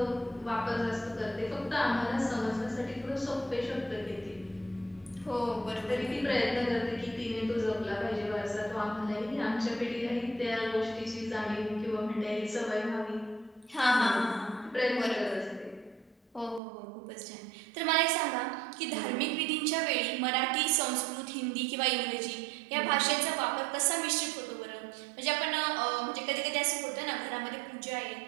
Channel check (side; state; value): left; drops out; at 16.6 s